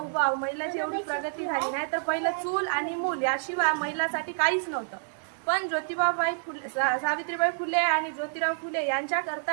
आहोत। महिलाची एवढी प्रगती झाली नाही तर पहिले चूल आणि मूल याशिवाय महिलांसाठी काहीच नव्हतं। पण ज्योतिबाबाई फुले सावित्रीबाई फुले आणि ज्योतिराव फुले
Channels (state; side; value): silent; left; digital silence